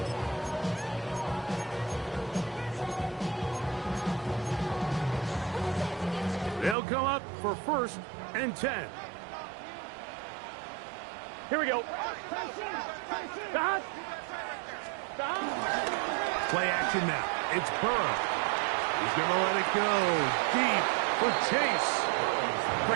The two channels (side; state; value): left; drops out; at 6.8 s